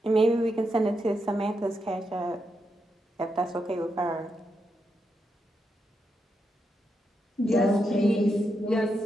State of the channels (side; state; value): both; normal; correlation 0.84